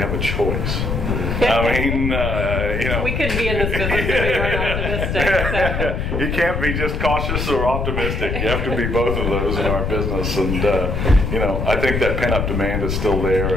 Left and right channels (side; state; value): left; noise; rumble, 2 dB below the sound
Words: a choice. I mean, we couldn't be in this business if we weren't optimistic. So. You can't be just cautious or optimistic. You have to be both of those in our business. And, I think that pent-up demand is still there.